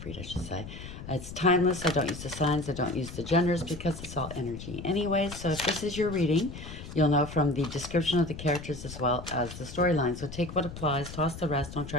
read I should say. It's timeless, I don't use the signs, I don't use the genders because it's all energy anyways. So if this is your reading, you'll know from the description of the characters as well as the storyline. So take what applies, toss the rest, don't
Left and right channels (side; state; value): left; noise; rumble, 11 dB below the sound